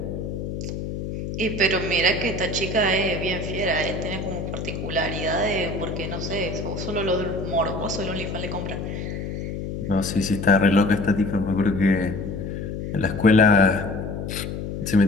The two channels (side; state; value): left; noise; hum, 5 dB below the sound